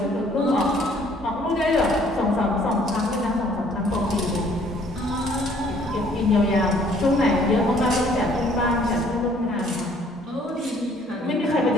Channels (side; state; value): both; normal; correlation 0.60